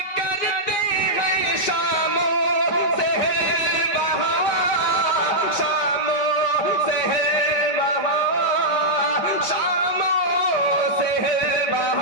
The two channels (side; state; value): right; late; 5.2 ms